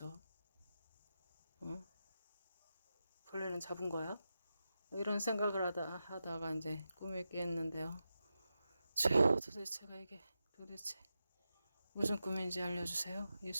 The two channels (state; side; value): inverted; both; correlation -0.90